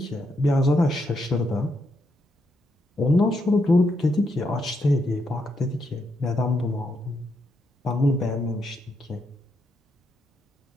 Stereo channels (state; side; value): normal; both; correlation 0.80